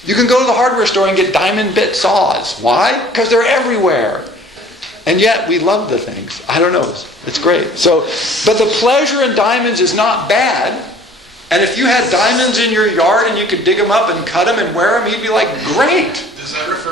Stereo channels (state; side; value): normal; both; correlation 0.51